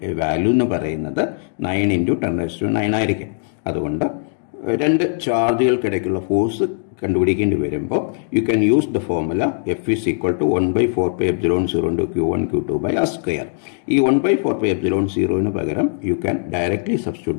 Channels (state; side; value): silent; right; 63 dB below the other